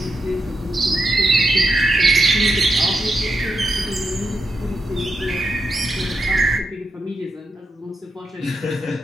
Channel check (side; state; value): both; normal; correlation 0.84